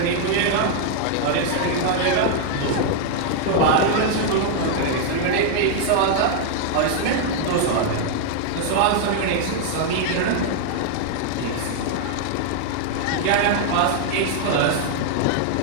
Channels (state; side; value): different; both; correlation 0.00